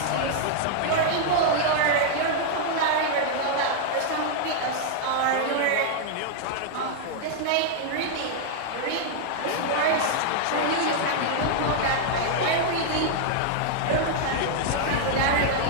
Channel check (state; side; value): different; both; correlation -0.01